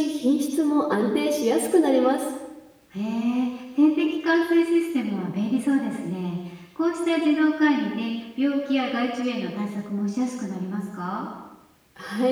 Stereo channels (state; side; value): identical; both; correlation 1.00